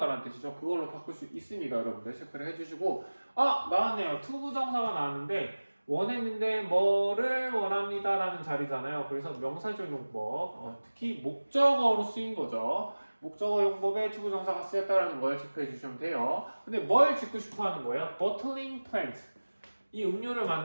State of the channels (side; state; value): both; inverted; correlation -1.00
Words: 뜻이죠. 그걸로 바꿀 수 있습니다, 여러분들 체크를 해주시고 나왔네요. 투부정사가 나왔는데 원했는데 뭐를 원합니다라는 자리잖아요. 그래서 명사적 용법, 특히 목적어로 쓰인 거죠. 목적어 용법에 투부정사가 쓰였다는 걸 체크해 주시면 돼요. 근데 뭘 짓고 싶어 하는 거예요? bottling plant. 이 음료를